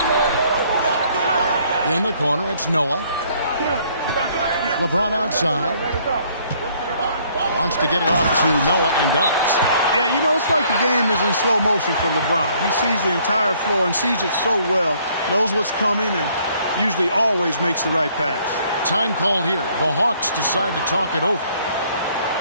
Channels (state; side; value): inverted; both; correlation -0.63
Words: In the corner, it's Noah. LeBron outside. Wants to get it off to Noah and does. Yeah, you know, it's like the game is in slow motion for LeBron. He sees the entire floor and sees it so well, knows what's coming, and usually always makes the right pass. Time called here. The Hawks decide to talk it over.